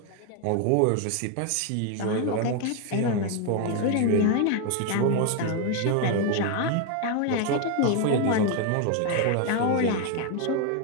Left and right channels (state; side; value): different; both; correlation 0.01